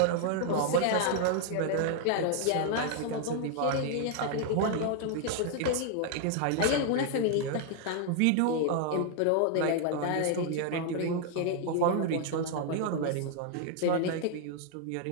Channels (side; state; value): both; different; correlation 0.00